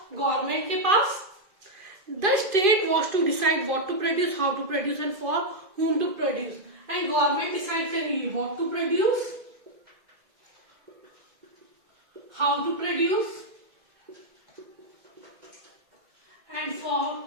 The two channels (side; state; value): left; late; 2.0 ms